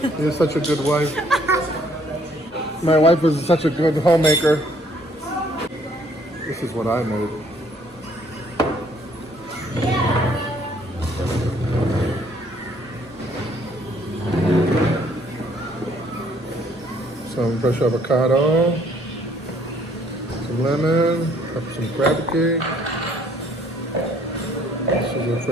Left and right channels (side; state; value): both; normal; correlation 0.63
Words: You're such a good wife. My wife is such a good homemaker. This is what I made. Some fresh avocado, some lemon, some crab cake. This is a